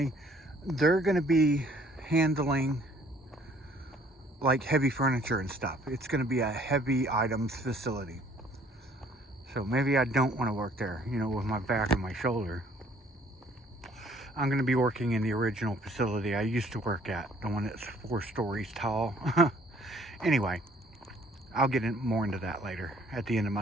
they're going to be handling like heavy furniture and stuff. It's going to be a heavy items facility. So maybe I don't want to work there, you know, with my back and my shoulder. I'm going to be working in the original facility I used to work at, the one that's 4 stories tall. Anyway, I'll get more into that later at the end of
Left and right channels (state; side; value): normal; both; correlation 0.59